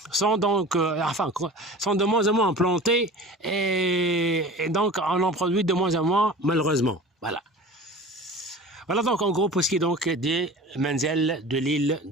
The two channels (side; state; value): both; normal; correlation 0.38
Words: sont de moins en moins plantées et donc on en produit de moins en moins, malheureusement. Voilà. Voilà donc en gros pour ce qui est donc des Menzel de l'île